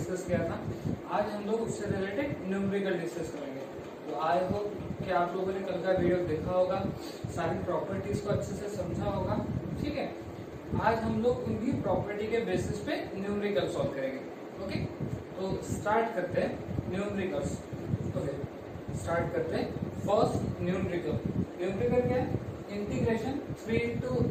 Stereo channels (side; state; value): both; identical; correlation 1.00